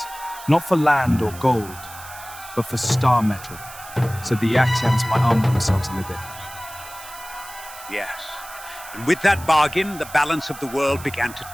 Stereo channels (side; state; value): right; noise; hiss, 16 dB below the sound